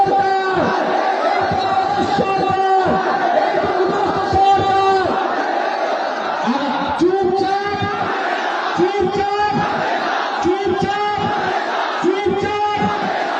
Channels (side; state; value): both; identical; correlation 1.00